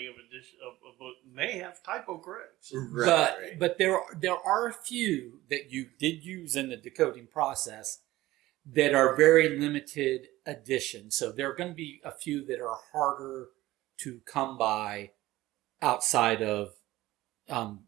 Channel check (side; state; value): left; quieter; 17.0 dB